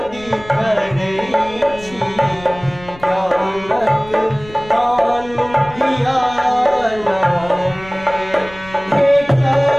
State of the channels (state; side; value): noise; left; rumble, 19 dB below the sound